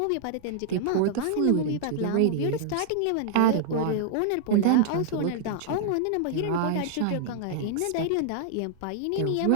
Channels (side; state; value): both; different; correlation -0.01